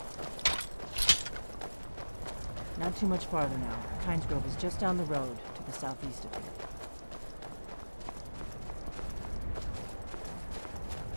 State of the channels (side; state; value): both; inverted; correlation -1.00